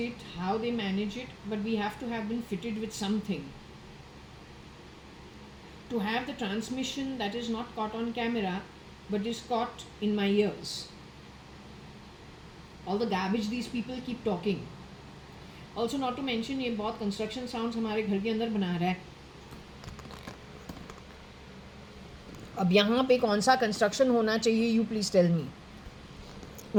how they manage it, but we have to have been fitted with something. To have the transmission that is not caught on camera, but is caught in my ears. All the garbage these people keep talking. Also, not to mention, ये बहुत construction sounds हमारे घर के अंदर बना रहा है. अब यहाँ पे कौन सा कंस्ट्रक्शन होना चाहिए, you please tell me.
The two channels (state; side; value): identical; both; correlation 1.00